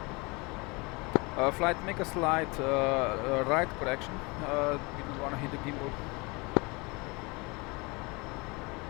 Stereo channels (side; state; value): right; quieter; 27.1 dB